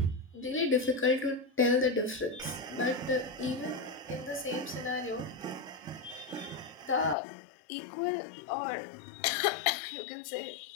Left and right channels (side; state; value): right; drops out; at 7.2 s